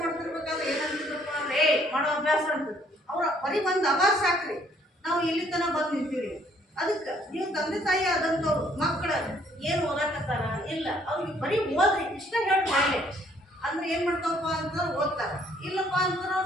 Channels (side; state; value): both; normal; correlation 0.63